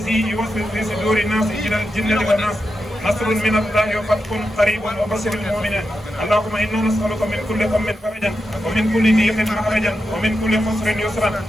يوسوس في صدور الناس إلى الجنة والناس نصر من الله وفتح قريب وبشر المؤمنين اللهم إنا نسألك من كل هم فرجا ومن كل ضيق مخرجا ومن كل خسر يسرا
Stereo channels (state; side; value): normal; both; correlation 0.88